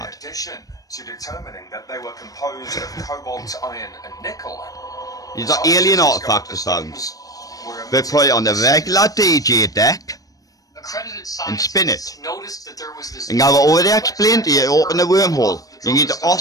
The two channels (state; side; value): late; right; 0.17 ms